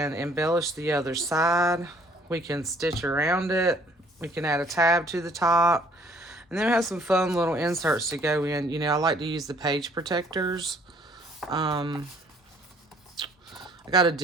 embellish the other side. We can stitch around it. We can add a tab to the top. And then we have some fun little inserts to go in. You know, I like to use the page protectors. I got a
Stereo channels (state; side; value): normal; both; correlation 0.59